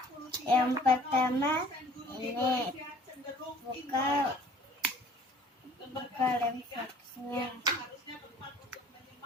Yang pertama ini buka lem foxnya.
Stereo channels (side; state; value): both; normal; correlation 0.52